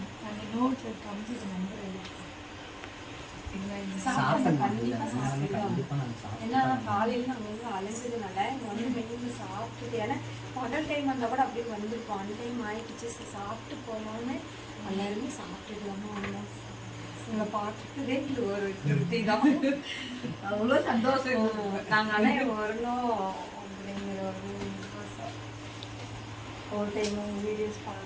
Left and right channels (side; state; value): both; identical; correlation 1.00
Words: நாங்கள் நோட்டில் கம்ப்யூட்டர் நம்பர் ஏன்னா காலையில் நாங்கள் வந்து அலைஞ்சதுனால இங்கே வந்து மெனு சாப்பிட்டுட்டு, ஏன்னா பகல் டைம் வந்தால் கூட அப்படியே வந்திருக்கோம். அந்த டைம் ஆயிடுச்சு. சாப்பிட்டு போனோன்னு எல்லாருமே சாப்பிட்டுக்கலாமா வந்தோம். உங்களை பார்த்துட்டதே இது ஒரு திருப்தி தான். அவ்வளோ சந்தோஷம். நாங்கள் ஆனால் வரணும் அப்படிங்கிற ஒரு ஆசை. ஒரு டைம் வீடியோஸ்